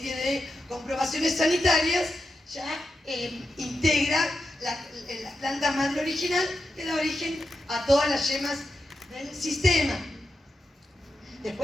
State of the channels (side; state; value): both; normal; correlation 0.88